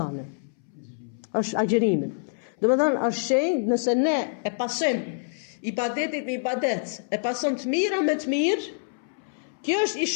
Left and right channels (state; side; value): silent; right; 61 dB below the other